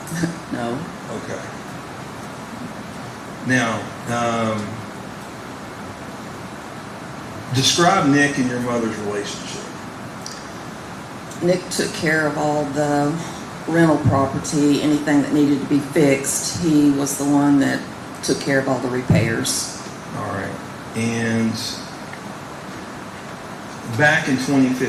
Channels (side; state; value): both; identical; correlation 1.00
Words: No. Okay. Now, describe Nick and your mother's relationship. Nick took care of all the rental property, anything that needed to be fixed. He was the one that took care of all the repairs. All right. And back in